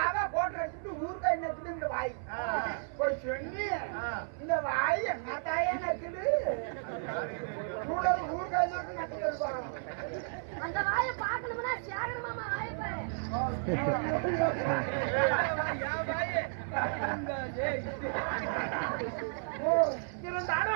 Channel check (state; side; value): silent; left; 56 dB below the other